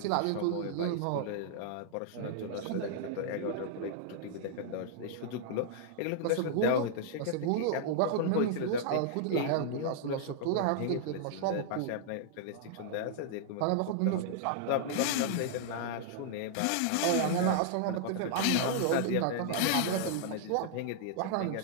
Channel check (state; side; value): different; both; correlation -0.01